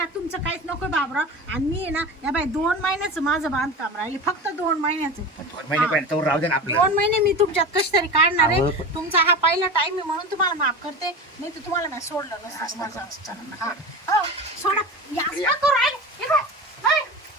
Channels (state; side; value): normal; both; correlation 0.29